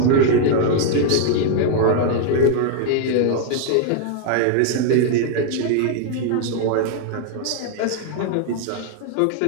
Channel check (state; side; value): different; both; correlation 0.01